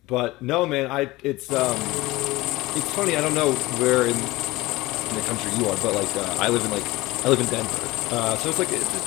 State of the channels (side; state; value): right; quieter; 19.9 dB